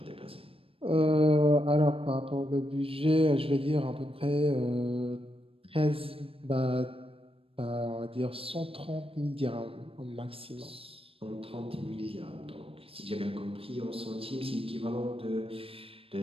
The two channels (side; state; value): left; late; 0.27 ms